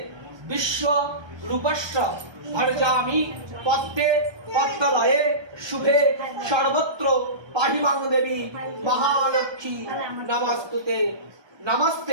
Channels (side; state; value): left; late; 1.2 ms